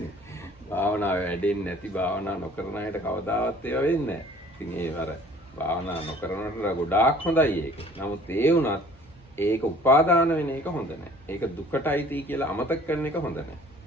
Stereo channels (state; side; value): normal; both; correlation 0.51